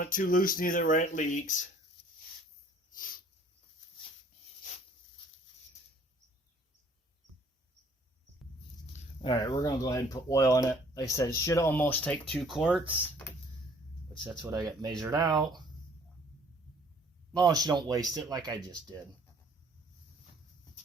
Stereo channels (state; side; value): normal; both; correlation 0.58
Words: it too loose neither where it leaks. Alright, we're going to go ahead and put oil in it. Like I said, it should almost take 2 quarts, which that's what I got measured out. As long as you don't waste it like I just did.